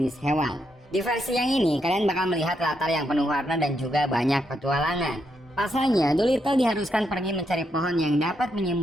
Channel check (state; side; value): normal; both; correlation 0.80